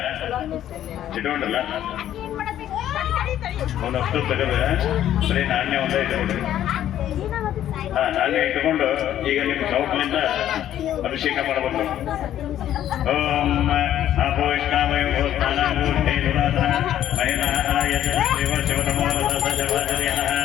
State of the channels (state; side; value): quieter; right; 11.6 dB